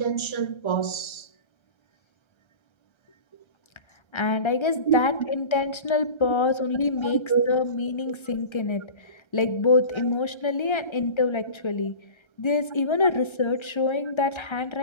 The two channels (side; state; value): right; late; 1.3 ms